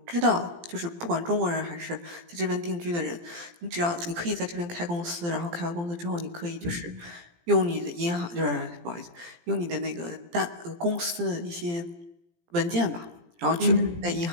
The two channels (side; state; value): left; late; 17 ms